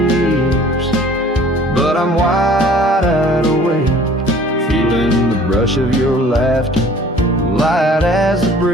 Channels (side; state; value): both; normal; correlation 0.51